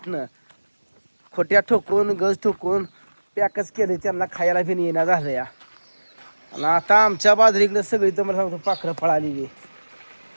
खोट्या ठोकून गज ठोकून पॅकच केले. त्यांना खायला बी येणं झालं या. आणि आता आमच्या बाजरीकडे सगळी तुम्हाला सांगतो पाखरं पळाली.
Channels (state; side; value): inverted; both; correlation -1.00